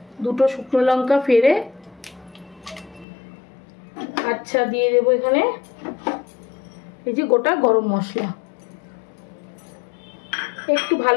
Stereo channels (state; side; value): drops out; right; at 3.1 s